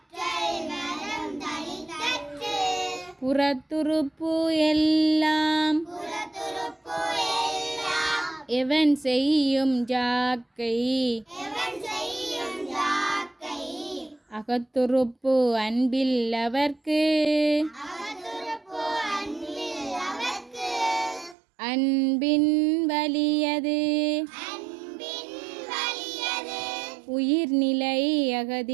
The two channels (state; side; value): drops out; left; at 21.4 s